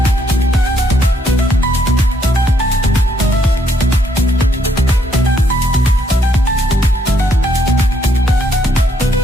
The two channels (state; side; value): normal; both; correlation 0.71